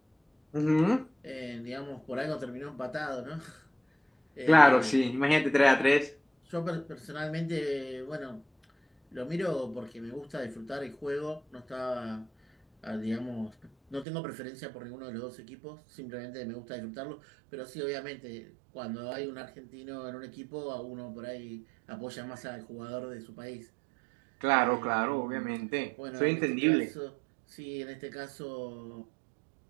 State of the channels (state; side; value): drops out; left; at 14.1 s